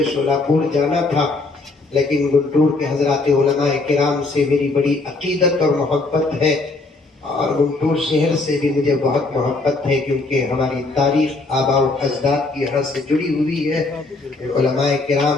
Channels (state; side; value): quieter; right; 3.4 dB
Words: شولاپور جانا تھا. لیکن گنٹور کے حضرات علماء کرام سے میری بڑی عقیدت اور محبت ہے. اور گنٹور شہر سے بھی مجھے بہت محبت ہے، کیونکہ ہماری تاریخ آباء و اجداد کی یہاں سے جڑی ہوئی ہے۔ علماء